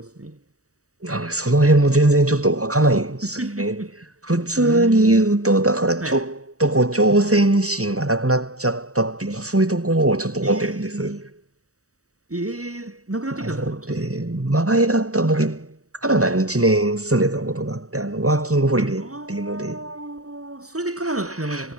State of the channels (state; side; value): late; left; 0.66 ms